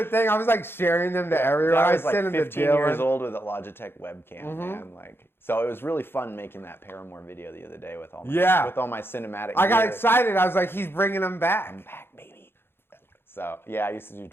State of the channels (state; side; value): late; right; 0.11 ms